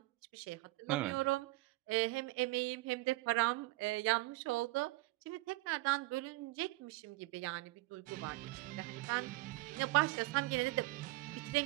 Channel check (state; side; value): quieter; left; 19.9 dB